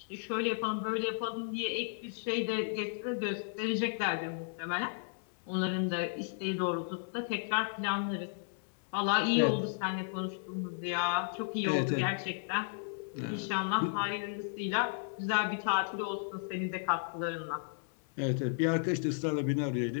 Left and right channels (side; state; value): right; silent; 55 dB below the other